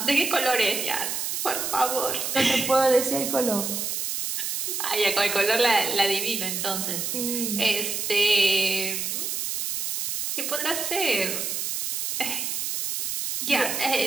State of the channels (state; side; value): noise; right; hiss, 2 dB below the sound